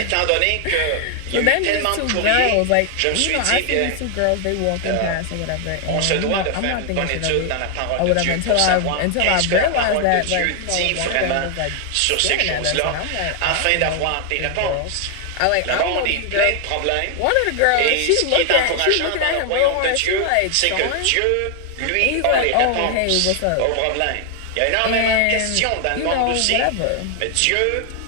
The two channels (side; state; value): both; different; correlation 0.00